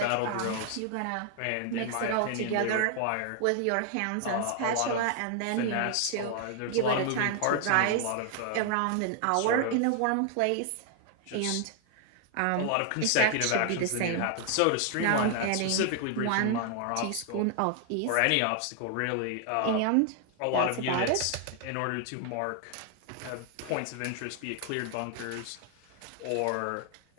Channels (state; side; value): different; both; correlation 0.00